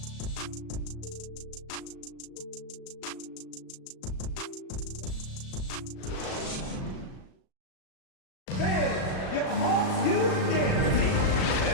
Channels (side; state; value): right; late; 37 ms